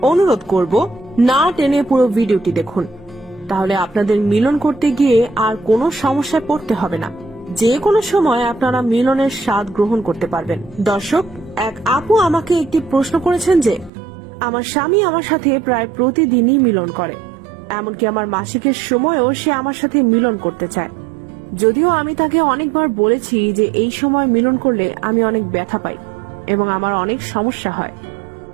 অনুরোধ করব না টেনে পুরো ভিডিওটি দেখুন, তাহলে আপনাদের মিলন করতে গিয়ে আর কোনো সমস্যায় পড়তে হবে না। যে কোনো সময় আপনারা মিলনের স্বাদ গ্রহণ করতে পারবেন। দর্শক, এক আপু আমাকে একটি প্রশ্ন করেছেন যে আমার স্বামী আমার সাথে প্রায় প্রতিদিনই মিলন করে, এমনকি আমার মাসিকের সময়ও সে আমার সাথে মিলন করতে চায়। যদিও আমি তাকে অনেকবার বলেছি যে এই সময় মিলন করলে আমি অনেক ব্যথা পাই এবং আমার অনেক সমস্যা হয়,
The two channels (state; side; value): drops out; left; at 13.9 s